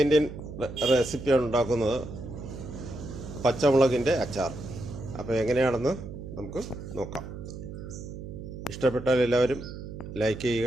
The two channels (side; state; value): right; noise; hum, 10 dB below the sound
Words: റെസിപ്പിയാണ് ഉണ്ടാക്കുന്നത്, പച്ചമുളകിൻ്റെ അച്ചാർ. അപ്പോൾ എങ്ങനെയാണെന്ന് നമുക്ക് നോക്കാം. ഇഷ്ടപ്പെട്ടാൽ എല്ലാവരും ലൈക്ക്